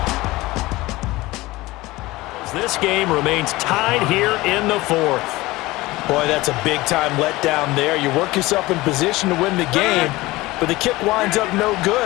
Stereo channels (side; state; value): right; quieter; 19.8 dB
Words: This game remains tied here in the 4th. Boy, that's a big-time letdown there. You work yourself in position to win the game, but the kick winds up no